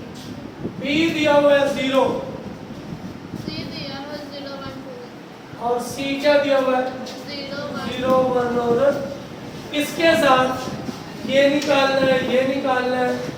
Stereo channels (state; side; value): identical; both; correlation 1.00